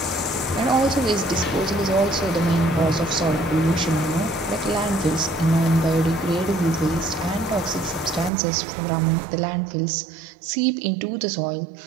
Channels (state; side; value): drops out; left; at 8.3 s